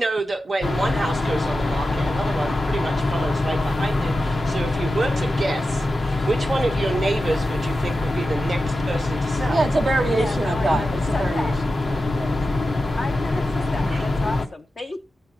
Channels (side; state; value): both; normal; correlation 0.91